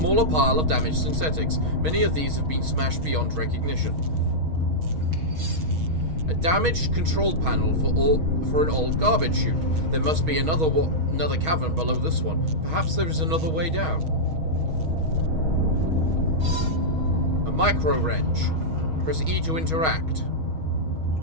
pile of damaged synthetics. Many of these have been smashed beyond recognition. A damaged control panel for an old garbage chute. There must be another cavern below this one. Perhaps there is another way down. A micro wrench. Press E to interact.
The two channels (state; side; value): late; left; 6.3 ms